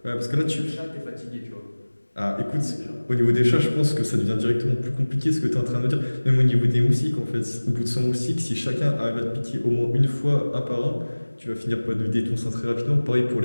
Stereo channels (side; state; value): both; inverted; correlation -1.00